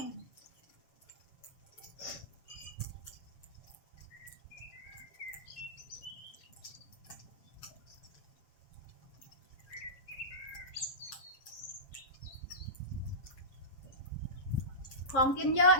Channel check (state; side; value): late; right; 7.3 ms